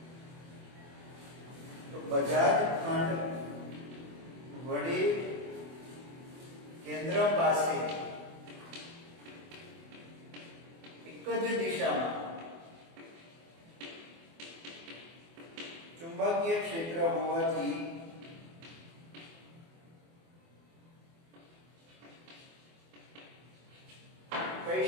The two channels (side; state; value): left; late; 24 ms